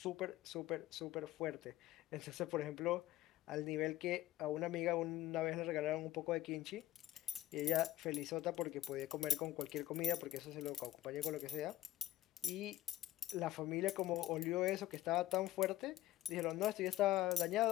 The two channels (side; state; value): right; quieter; 14.2 dB